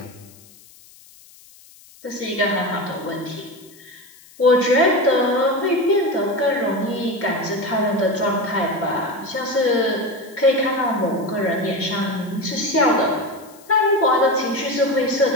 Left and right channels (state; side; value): noise; left; hiss, 24 dB below the sound